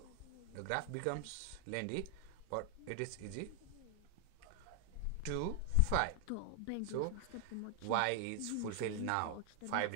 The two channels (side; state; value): both; different; correlation 0.00